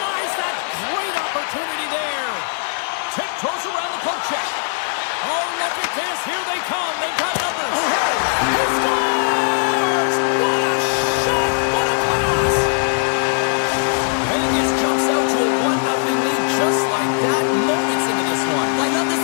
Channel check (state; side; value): silent; right; 56 dB below the other